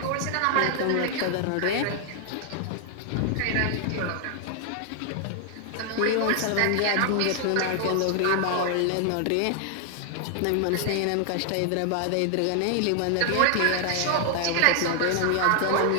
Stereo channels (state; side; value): different; both; correlation 0.00